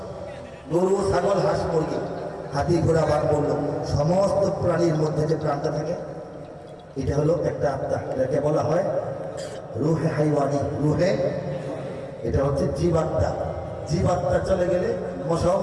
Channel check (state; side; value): identical; both; correlation 1.00